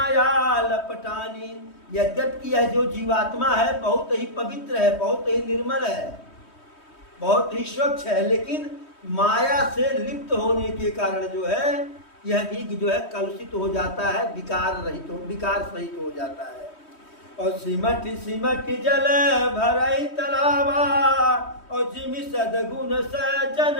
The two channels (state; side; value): late; right; 3.1 ms